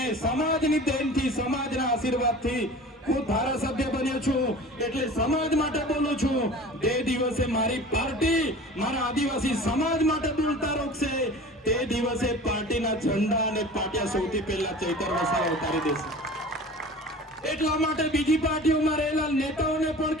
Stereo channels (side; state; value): both; normal; correlation 0.40